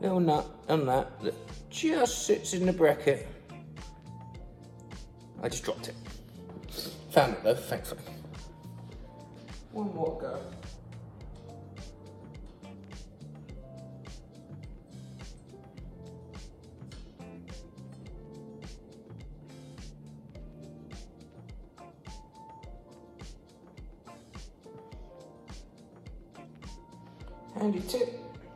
nut and that just sits in the bracket. I just dropped it. Found it though, thankfully. One more go. Handy tip,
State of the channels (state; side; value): identical; both; correlation 1.00